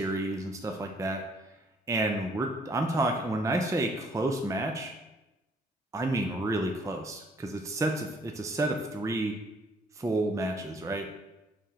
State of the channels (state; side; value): normal; both; correlation 0.63